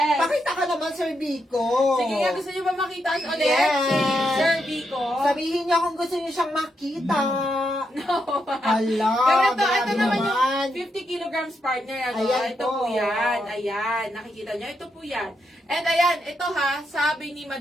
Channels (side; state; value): both; normal; correlation 0.82